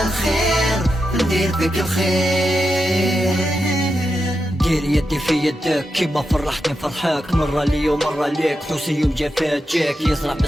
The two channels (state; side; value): normal; both; correlation 0.88